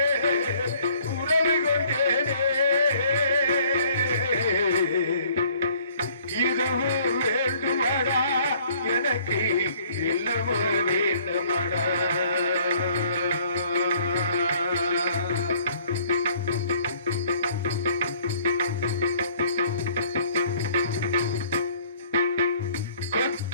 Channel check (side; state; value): both; inverted; correlation -0.57